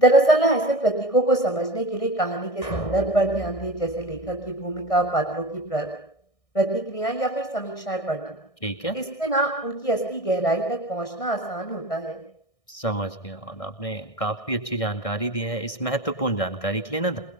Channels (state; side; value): late; right; 1.6 ms